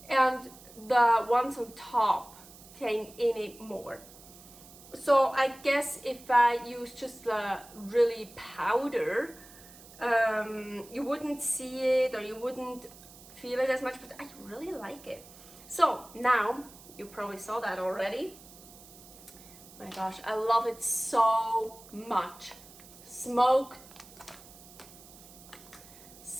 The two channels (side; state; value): right; noise; hiss, 20 dB below the sound